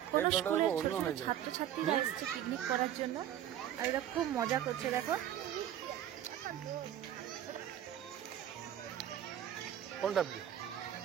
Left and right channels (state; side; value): quieter; left; 11.1 dB